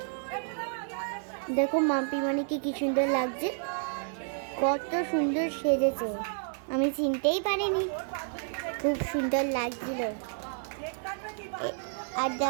দেখো মাম্পি মানিকে কি সুন্দর লাগছে, কত সুন্দর সেজেছে, আমি চিনতেই পারিনি, খুব সুন্দর লাগছিল। আর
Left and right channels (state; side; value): silent; left; digital silence